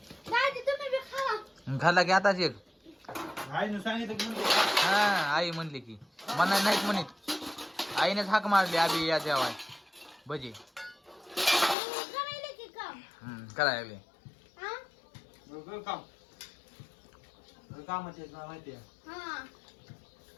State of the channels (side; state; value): right; drops out; at 11.8 s